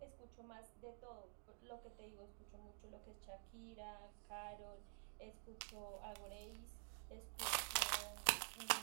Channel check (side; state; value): left; silent; digital silence